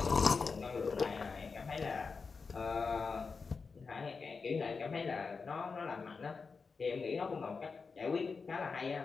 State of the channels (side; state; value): right; quieter; 4.8 dB